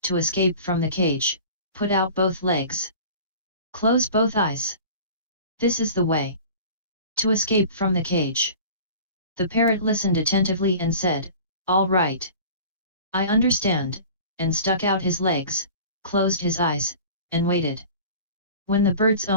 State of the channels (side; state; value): both; inverted; correlation -0.41